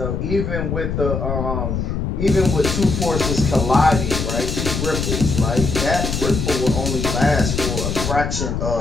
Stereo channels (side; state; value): left; noise; rumble, 2 dB below the sound